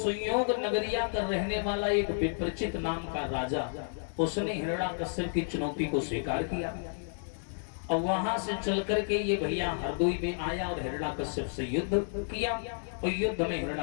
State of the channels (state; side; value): silent; right; digital silence